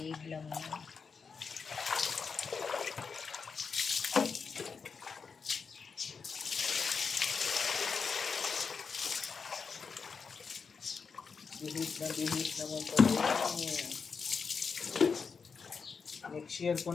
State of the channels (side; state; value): right; quieter; 5.5 dB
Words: lang yan. Bihib naman pala yan. Next year ko